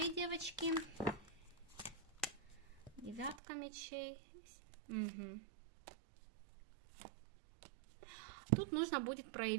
девочки? Девятка мечей. Угу. Тут нужно будет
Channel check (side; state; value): left; drops out; at 3.4 s